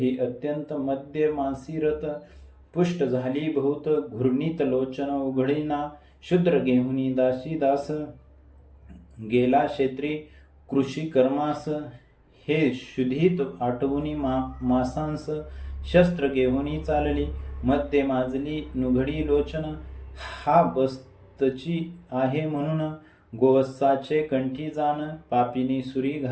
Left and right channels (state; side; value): identical; both; correlation 1.00